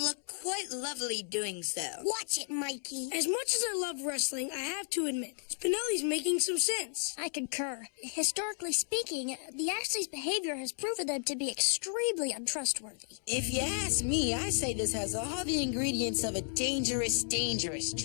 look quite lovely doing so. Watch it, Mikey. As much as I love wrestling, I have to admit, Spinelli's making some sense. I concur. Historically speaking, the Ashleys' behavior has proven them to be extremely untrustworthy. If you ask me, I say this has all the ingredients of a dangerous, dangerous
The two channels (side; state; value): right; silent; digital silence